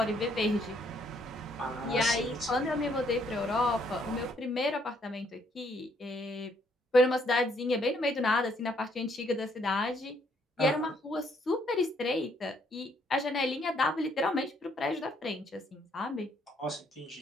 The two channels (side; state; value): both; normal; correlation 0.69